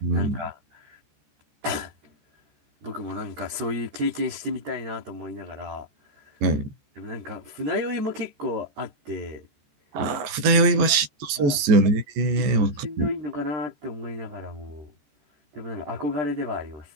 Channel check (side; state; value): left; late; 14 ms